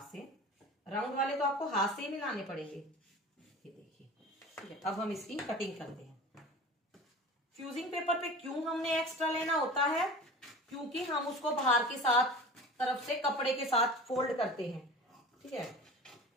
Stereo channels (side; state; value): both; normal; correlation 0.37